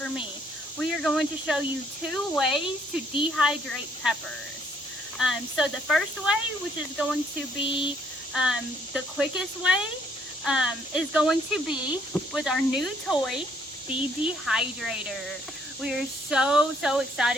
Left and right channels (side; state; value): both; normal; correlation 0.67